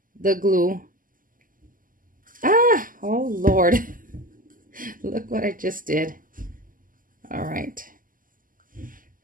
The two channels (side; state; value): left; late; 0.40 ms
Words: the glue. Ah, oh Lord. Look what I just did. All right.